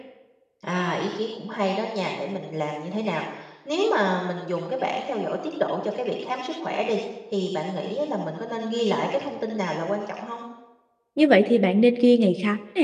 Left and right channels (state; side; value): identical; both; correlation 1.00